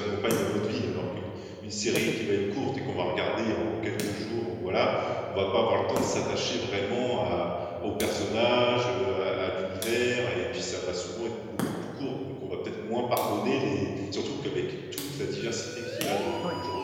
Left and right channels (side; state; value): both; identical; correlation 1.00